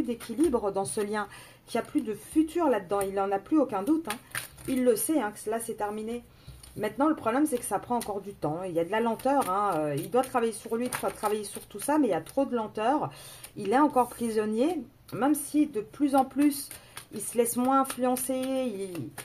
d'équilibre dans ce lien, qu'il n'y a plus de futur là-dedans. Il n'en a plus aucun doute. Hein. Il le sait, hein, que là, c'est terminé. Maintenant, le problème, c'est que ça prend encore du temps. Il y a de la lenteur. Hein. Il doit travailler sur lui, travailler sur tout ça, mais il y a trop de lenteur. Il est encore prisonnier, même si de plus en plus, il se laisse moins influencer,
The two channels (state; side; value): identical; both; correlation 1.00